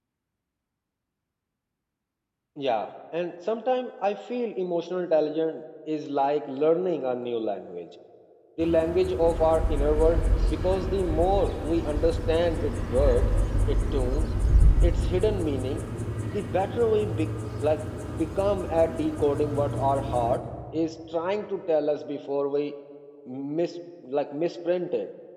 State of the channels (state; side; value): identical; both; correlation 1.00